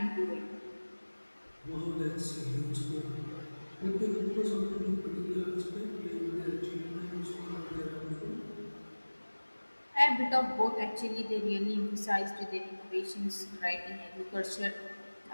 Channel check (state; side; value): inverted; both; correlation -1.00